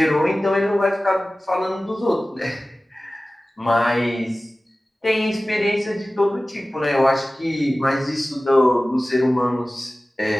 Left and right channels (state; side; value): normal; both; correlation 0.97